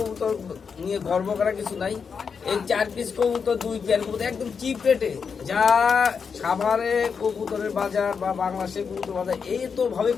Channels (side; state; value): right; quieter; 6.0 dB